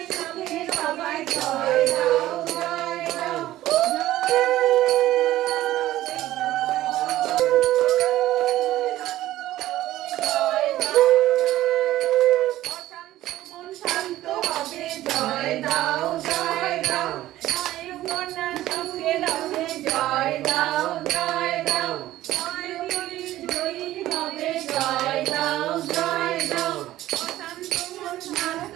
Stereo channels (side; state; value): left; quieter; 14.8 dB